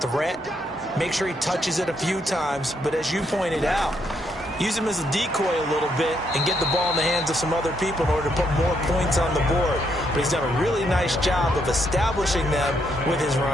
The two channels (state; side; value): normal; both; correlation 0.75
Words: Make sure he touches it a few times, but as you pointed out, use him as a decoy a little bit and get the ball in the hands of some other people in order to put more points on the board. But he's done a really nice job of establishing them with his